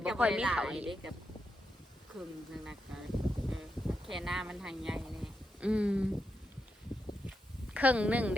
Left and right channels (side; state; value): both; normal; correlation 0.85